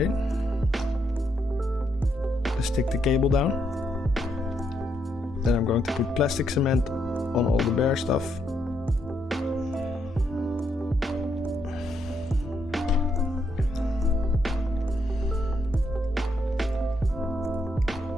to stick the cable down. Then I'm going to put plastic cement on all the bare stuff.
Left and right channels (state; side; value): normal; both; correlation 0.77